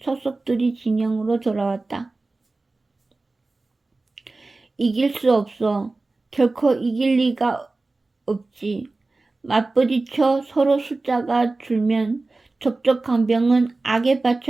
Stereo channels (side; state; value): left; quieter; 3.3 dB